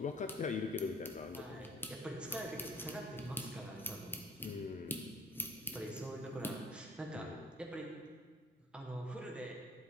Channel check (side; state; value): both; normal; correlation 0.56